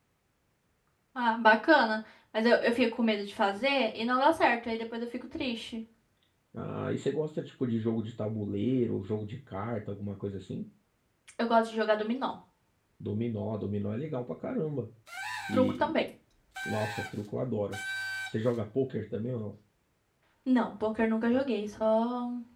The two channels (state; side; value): identical; both; correlation 1.00